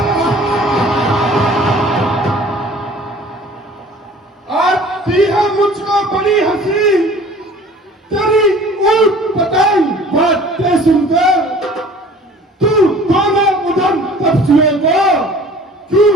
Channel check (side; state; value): both; normal; correlation 0.48